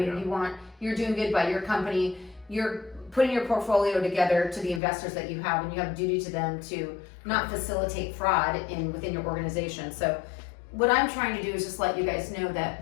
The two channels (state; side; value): drops out; right; at 4.8 s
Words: you're doing good by your company. You're putting your portfolio together to the investors that you have, and you have a duty to them to not facilitate fraud within your organization. So what I'm trying to do is just let you guys know